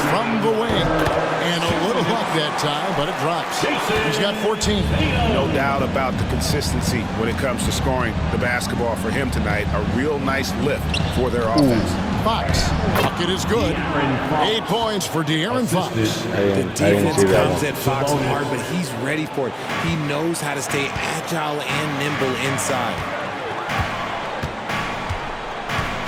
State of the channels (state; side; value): identical; both; correlation 1.00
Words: from the wing. And a little luck that time, but it drops. He's got 14. No doubt about the consistency when it comes to scoring the basketball for him tonight. A real nice lift for their offense. Fox. Bucket is good. 8 points for De'Aaron Fox. The defense comes at Fox hard, but he's ready for it. He knows how to stay agile and nimble inside.